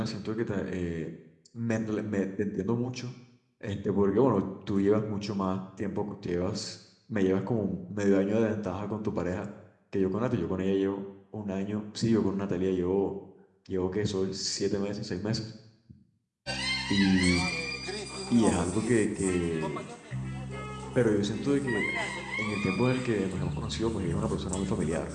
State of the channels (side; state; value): both; identical; correlation 1.00